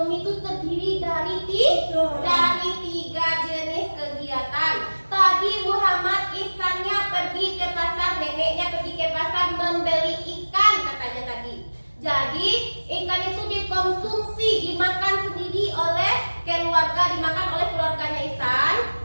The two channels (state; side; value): inverted; both; correlation -1.00